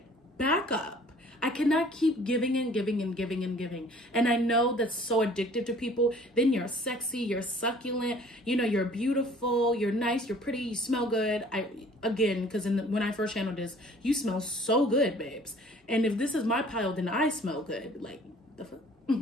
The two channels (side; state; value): both; normal; correlation 0.53